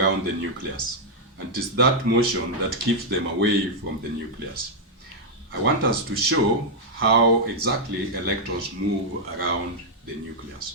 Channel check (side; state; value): both; normal; correlation -0.03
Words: the nucleus, and it is that motion that keeps them away from the nucleus. I want us to show how exactly electrons move around the